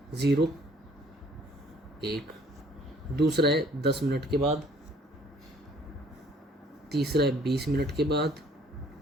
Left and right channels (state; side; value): normal; both; correlation 0.58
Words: 0 एक, दूसरा है 10 मिनट के बाद, तीसरा है 20 मिनट के बाद,